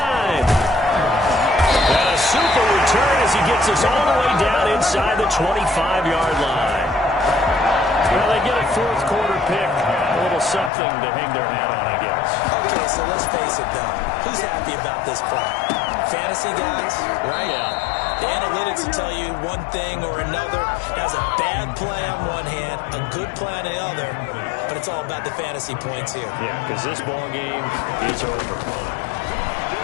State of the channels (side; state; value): right; drops out; at 10.7 s